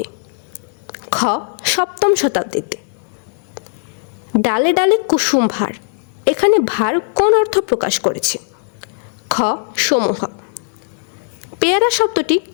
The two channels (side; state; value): right; silent; 60 dB below the other